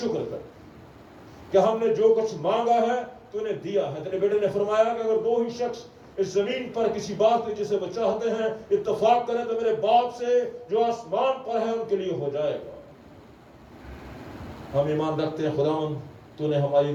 کریں کہ ہم نے جو کچھ مانگا ہے تو نے دیا ہے. تیرے بیٹے نے فرمایا کہ اگر 2 ہی شخص اس زمین پر کسی بات پہ جسے وہ چاہتے ہیں اتفاق کریں تو میرے باپ سے جو آسمان پر ہے ان کے لیے ہو جائے گا. ہم ایمان رکھتے ہیں خداوند تو نے ہماری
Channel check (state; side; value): identical; both; correlation 1.00